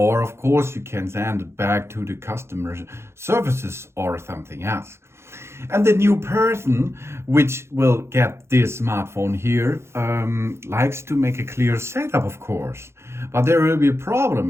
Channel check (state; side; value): late; left; 0.13 ms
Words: of course you can send it back to the customer services or something else. And the new person which will get this smartphone here likes to make a clear setup, of course. But there will be a